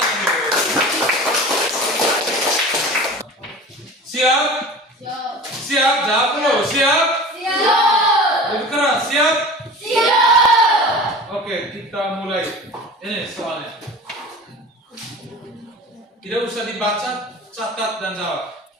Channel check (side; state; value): both; normal; correlation 0.37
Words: Siap? Siap, jawab dulu. Siap? Lebih keras, siap? Oke, kita mulai. Ini soalnya. Tidak usah dibaca, catat dan jawab.